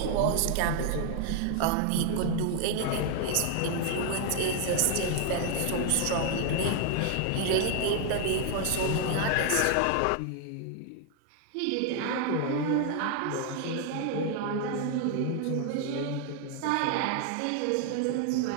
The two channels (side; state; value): both; different; correlation 0.00